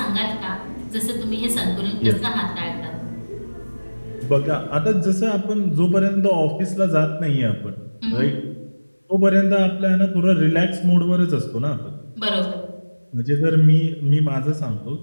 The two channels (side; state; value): both; inverted; correlation -1.00